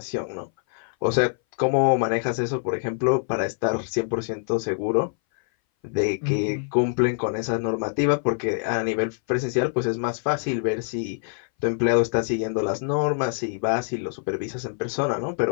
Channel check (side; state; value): right; silent; 59 dB below the other